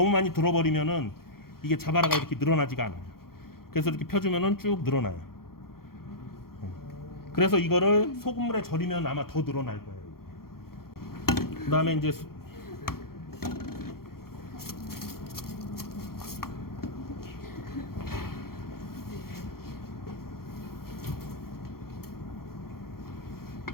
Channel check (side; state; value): right; late; 0.93 ms